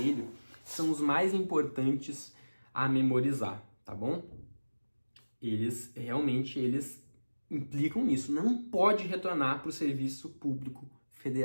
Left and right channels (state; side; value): inverted; both; correlation -1.00